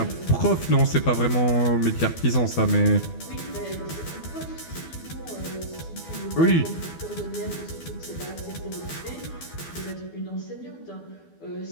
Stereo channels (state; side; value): late; right; 12 ms